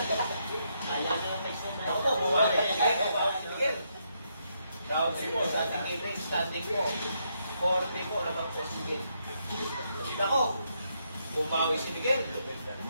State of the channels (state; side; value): inverted; both; correlation -0.77